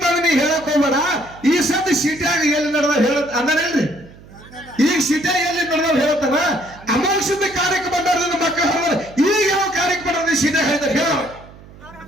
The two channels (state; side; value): noise; right; hum, 21 dB below the sound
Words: ನೀ ಹೇಳಕ್ ಹೋಗ್ಬೇಡ ಈ ಸತಿ ಸಿಟಿಯಾಗ ಎಲ್ಲಿ ನಡೆದ ಹೇಳ ಅಂದನೇನ್ರಿ ಈಗ ಸಿಟಿಯಾಗ ಎಲ್ಲಿ ನಡೆದ ಹೇಳ್ತಾನ ಅಮೋಘಸಿದ್ದ ಕಾರ್ಯಕ್ಕೆ ಬಂದವ್ರದಿಂದ ಮಕ್ಕಳು ಹೇಳಿದ್ರೆ ಈಗ ಯಾವ ಕಾರ್ಯಕ್ಕೆ ಬಂದ ಸಿಟಿಯಾಗ ಹೇಳಿದ್ರೆ ಹೇಳ